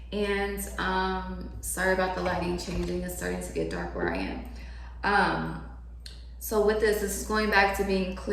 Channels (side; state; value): both; identical; correlation 1.00